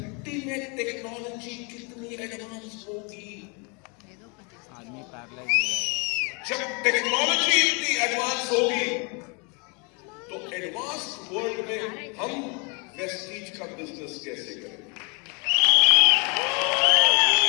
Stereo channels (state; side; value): quieter; right; 33.0 dB